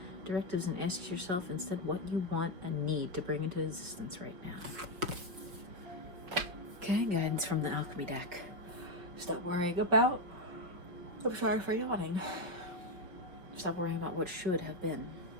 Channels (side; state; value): left; late; 5.6 ms